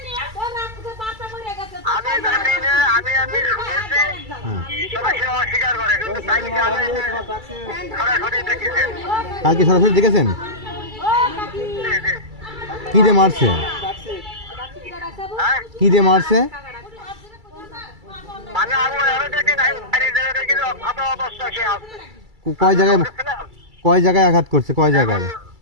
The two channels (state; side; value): late; left; 2.3 ms